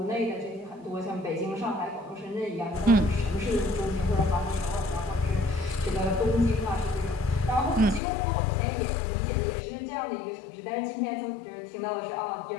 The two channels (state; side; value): drops out; right; at 8.0 s